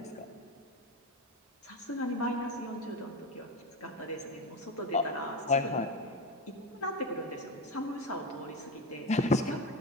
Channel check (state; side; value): normal; both; correlation 0.19